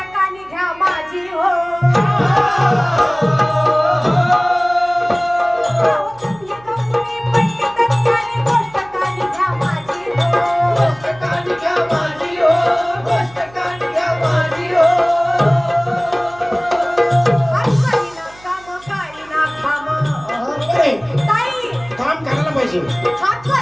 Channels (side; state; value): right; noise; hum, 25 dB below the sound